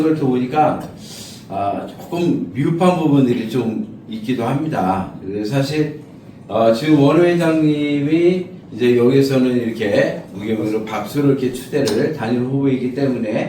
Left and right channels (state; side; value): identical; both; correlation 1.00